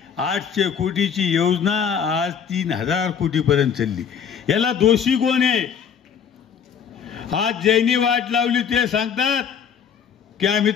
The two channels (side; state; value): right; quieter; 7.5 dB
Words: 800 कोटीची योजना आज 3000 कोटीपर्यंत चालली. याला दोषी कोण आहे? आज ज्यांनी वाट लावली ते सांगतात की आम्ही